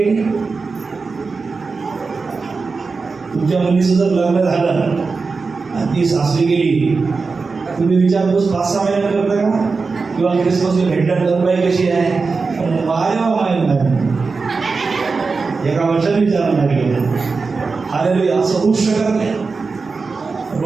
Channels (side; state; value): left; quieter; 4.4 dB